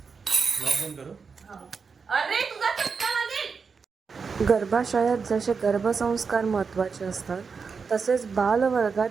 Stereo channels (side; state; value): left; quieter; 5.3 dB